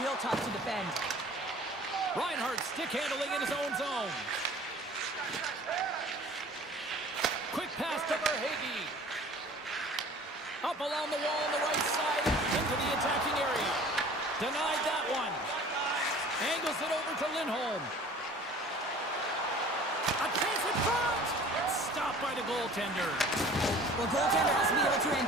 tough to defend. Reinhardt stick handling in his own zone. Quick pass to Verhaeghe. Up along the wall on the right side into the attacking area. Denied that one. Angles it over to Lindholm. A chance in front. Stopped by the goaltender. Well, goaltender has to be able to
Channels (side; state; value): both; normal; correlation 0.47